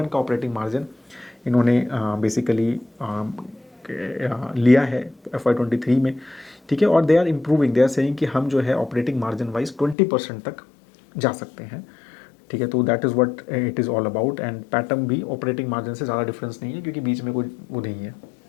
का ऑपरेटिंग मार्जिन इन्होंने बेसिकली लिया है FY23 में, ठीक है। और they are improving, they are saying कि हम जो है ऑपरेटिंग मार्जिन वाइज 20% तक जा सकते हैं, ठीक है। तो that is what it is all about. And pattern भी ऑपरेटिंग मार्जिन से ज़्यादा डिफरेंस नहीं है, क्योंकि बीच में कोई वो नहीं है,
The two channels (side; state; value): right; drops out; at 10.0 s